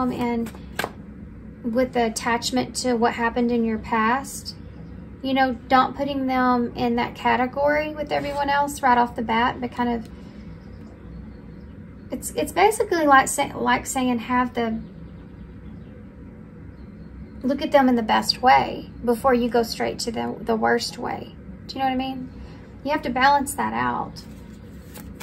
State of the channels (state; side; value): identical; both; correlation 1.00